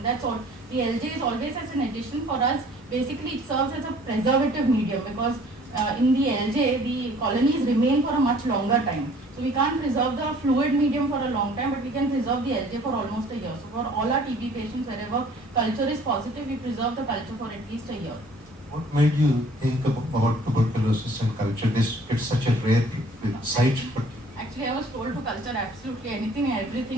That's all. The LJ is always as an addition for us. Basically, it serves as a preservative medium because in the LJ, the colonies remain for a much longer time. So we can't preserve the fluid medium for a long time, but we can preserve the LJ for almost a year. So for all our TB patients, wherever culture is positive, we preserve the culture for at least a year. What made you think about tuberculosis and culture? It's such a rare site. Actually, I was told to culture absolutely anything and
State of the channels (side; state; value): both; normal; correlation 0.53